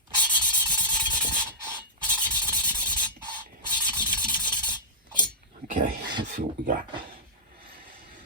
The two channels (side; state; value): both; normal; correlation -0.15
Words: Okay, let's see what we got.